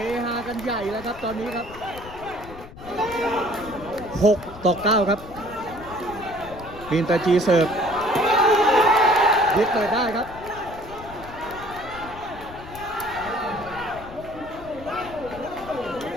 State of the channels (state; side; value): noise; left; rumble, 16 dB below the sound